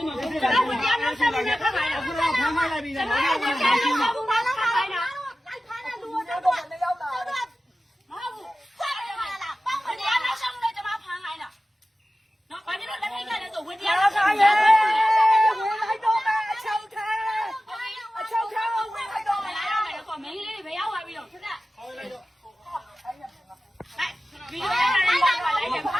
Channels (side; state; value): both; normal; correlation 0.95